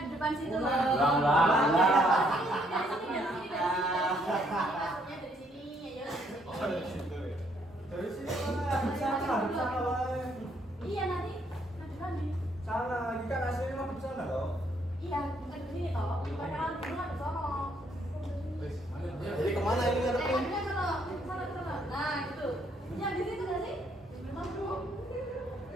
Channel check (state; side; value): normal; both; correlation 0.69